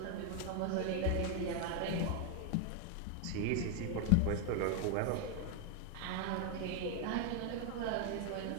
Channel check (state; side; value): different; both; correlation 0.01